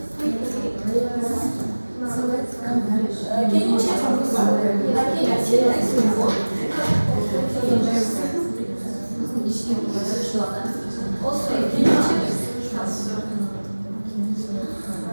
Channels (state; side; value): inverted; both; correlation -1.00